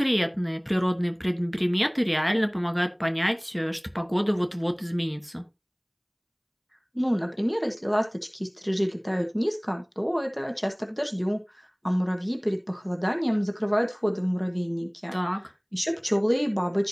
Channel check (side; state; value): both; identical; correlation 1.00